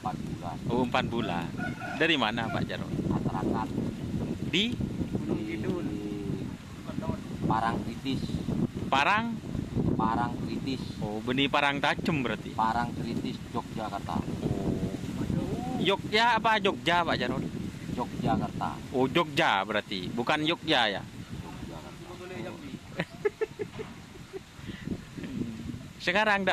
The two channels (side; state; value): both; identical; correlation 1.00